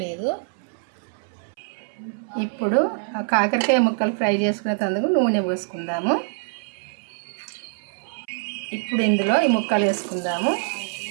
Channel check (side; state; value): left; silent; 62 dB below the other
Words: లేదు. ఇప్పుడు ఆ కాకరకాయ ముక్కలు ఫ్రై చేసుకునేందుకు నూనె పోసుకుందాము. ఇప్పుడు ఇందులో ఈ ముక్కలు వేసుకుందాము.